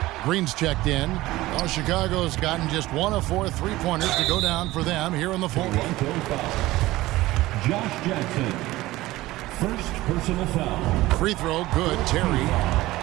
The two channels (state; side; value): quieter; left; 17.8 dB